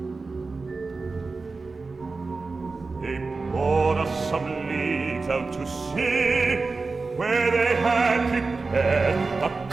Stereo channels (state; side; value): quieter; left; 4.0 dB